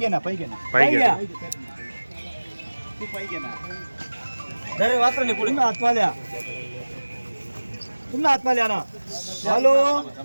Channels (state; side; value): inverted; both; correlation -1.00